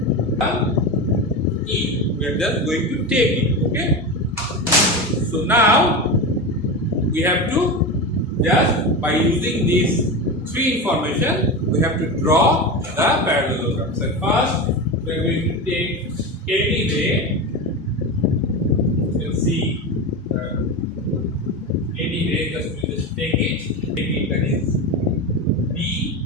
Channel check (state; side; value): normal; both; correlation 0.22